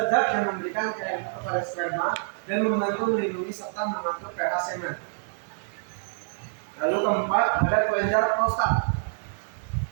yang memberikan cairan kepada sperma dan membantu melindungi serta mengatur pH semen. Lalu keempat ada kelenjar prostat.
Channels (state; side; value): silent; left; 60 dB below the other